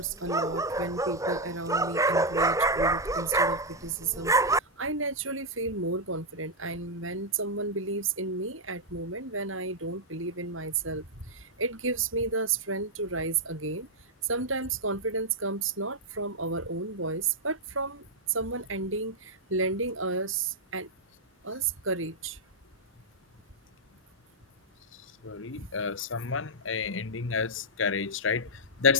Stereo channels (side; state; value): both; normal; correlation -0.02